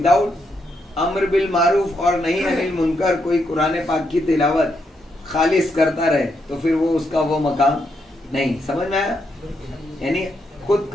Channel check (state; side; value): normal; both; correlation 0.79